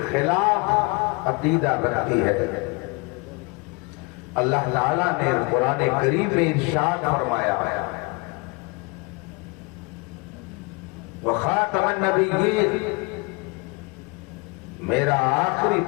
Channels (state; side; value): quieter; right; 27.8 dB